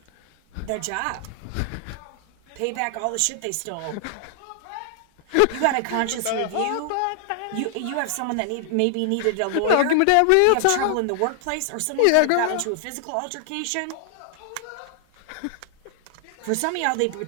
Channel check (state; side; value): different; both; correlation 0.00